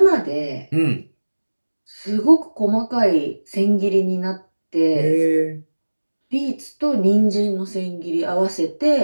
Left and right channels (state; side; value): inverted; both; correlation -1.00